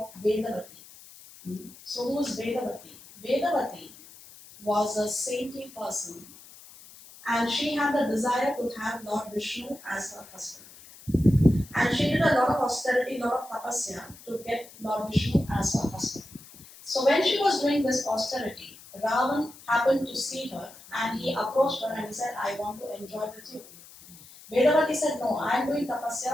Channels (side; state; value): left; noise; hiss, 20 dB below the sound